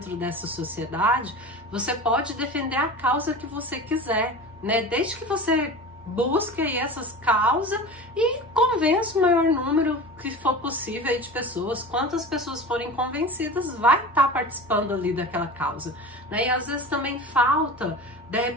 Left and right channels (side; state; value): both; normal; correlation 0.33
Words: dessa sociedade, você pode defender a causa que você quiser, né, desde que você busque aí essas causas e convença o maior número que for possível aí de pessoas. Quantas pessoas forem convencidas, vai estar participando ali daquela causa, né? E às vezes também falta, de